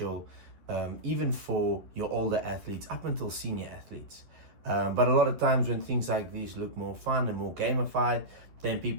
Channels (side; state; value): left; late; 11 ms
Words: even for your older athletes up until senior athletes. But a lot of times when things like these look more fun and more gamified, then